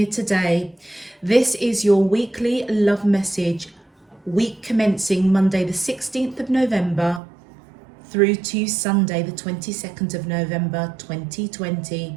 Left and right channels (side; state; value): left; drops out; at 7.2 s